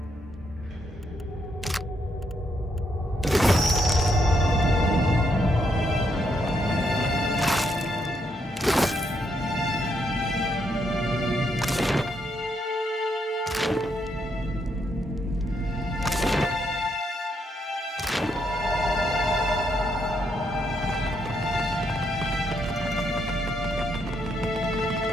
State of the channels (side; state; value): both; normal; correlation 0.76